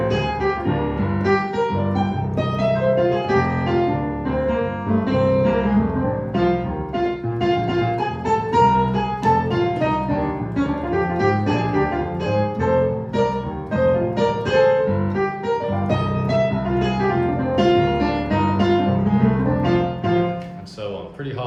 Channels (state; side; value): identical; both; correlation 1.00